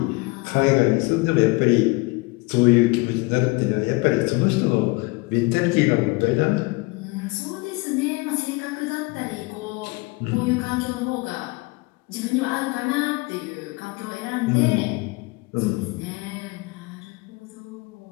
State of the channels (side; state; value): right; quieter; 24.7 dB